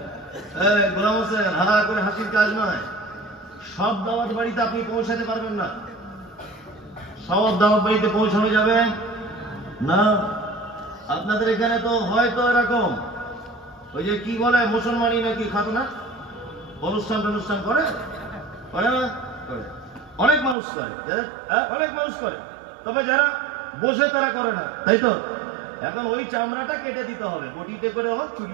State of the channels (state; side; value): drops out; left; at 20.6 s